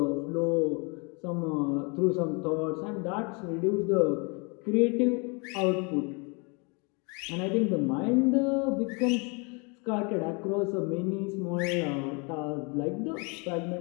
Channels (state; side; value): quieter; right; 32.0 dB